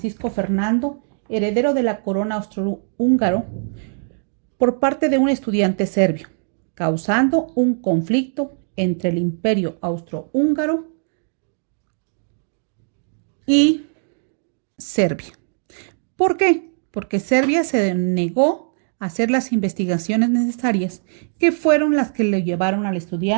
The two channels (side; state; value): left; silent; 65 dB below the other